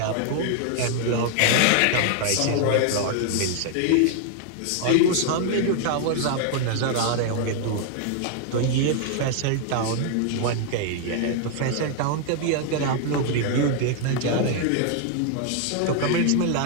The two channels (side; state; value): both; different; correlation 0.00